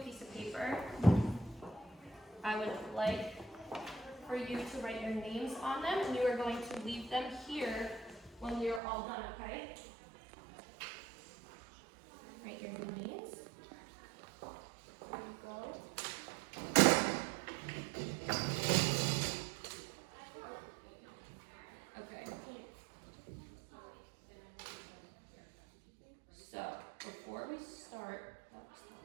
piece of paper. I would like for you to write your names on them, and you are going to leave them here when we are all done, okay? Write your names. There you go. Okay. So, before we start,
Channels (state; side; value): drops out; left; at 8.8 s